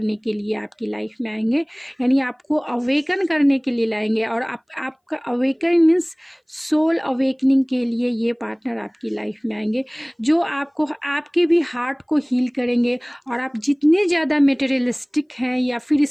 के लिए आपकी लाइफ में आएंगे, यानी आपको अवेकन करने के लिए लाएंगे। और आपका अवेकन मीन्स सोल अवेकनिंग के लिए ये पार्टनर आपकी लाइफ में आएंगे, जो आपको आपके भी हार्ट को हील करेंगे। और आप जितने ज़्यादा मटेरियलिस्टिक हैं या फिर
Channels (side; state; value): both; identical; correlation 1.00